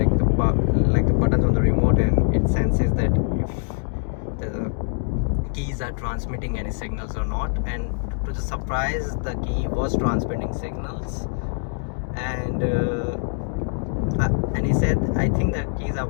the buttons on the remote, and it senses that if the keys are transmitting any signals or not. And to the surprise, the key was transmitting signals, and he said, I think the keys are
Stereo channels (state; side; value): silent; right; digital silence